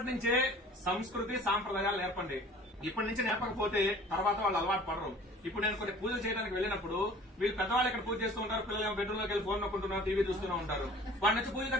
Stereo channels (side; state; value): both; normal; correlation 0.47